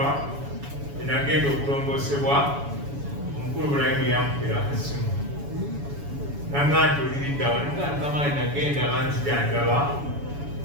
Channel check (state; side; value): late; left; 7.1 ms